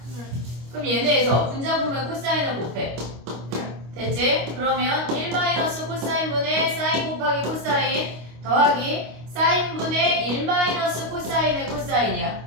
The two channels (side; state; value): left; late; 25 ms